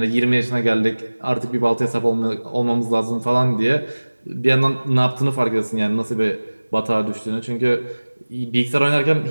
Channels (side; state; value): both; inverted; correlation -1.00